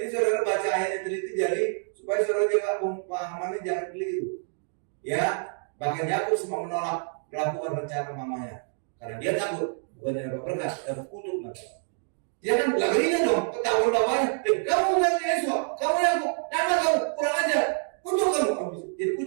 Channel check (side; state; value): left; silent; 60 dB below the other